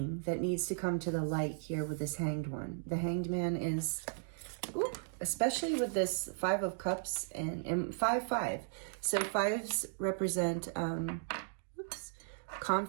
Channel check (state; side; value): silent; left; digital silence